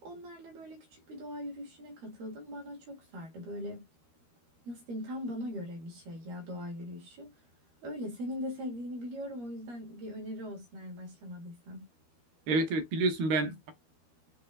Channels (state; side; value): late; left; 13 ms